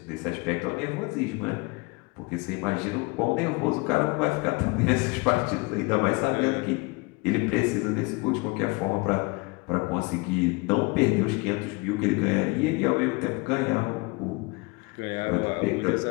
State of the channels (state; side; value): quieter; right; 26.8 dB